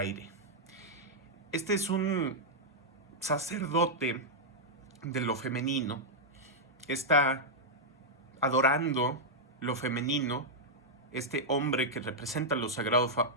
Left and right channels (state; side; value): normal; both; correlation -0.06